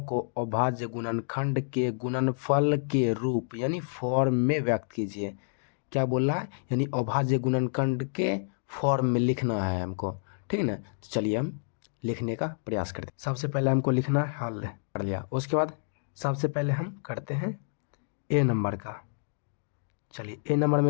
को अभाज्य गुणनखंड के गुणनफल के रूप यानी फॉर्म में व्यक्त कीजिए। क्या बोल रहा है? यानी अभाज्य गुणनखंड के फॉर्म में लिखना है हमको, ठीक है ना। तो चलिए हम लिखने का प्रयास करते हैं। सबसे पहले हमको लिखना है हल, कर लिया। उसके बाद सबसे पहले हम करते हैं ए नंबर का। चलिए ए नंबर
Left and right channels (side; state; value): right; silent; digital silence